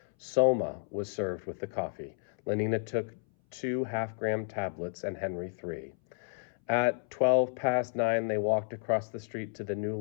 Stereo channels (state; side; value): silent; right; 57 dB below the other